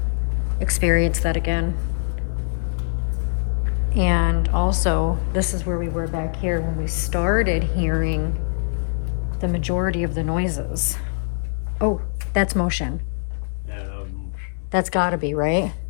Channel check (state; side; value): silent; right; digital silence